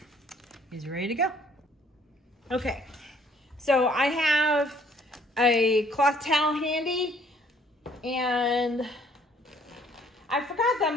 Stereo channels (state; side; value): normal; both; correlation 0.61